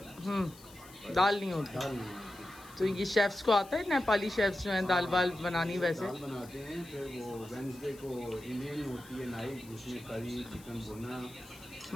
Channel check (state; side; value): noise; left; hiss, 21 dB below the sound